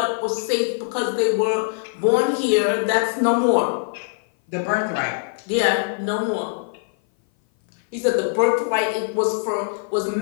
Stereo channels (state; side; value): silent; right; 58 dB below the other